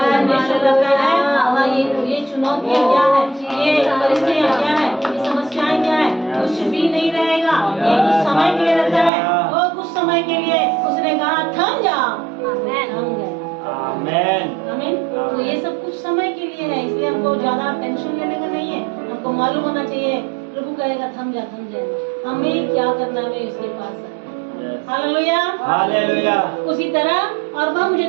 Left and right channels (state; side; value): drops out; left; at 9.1 s